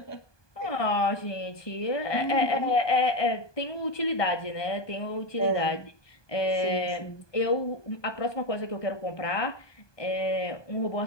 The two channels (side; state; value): right; late; 1.2 ms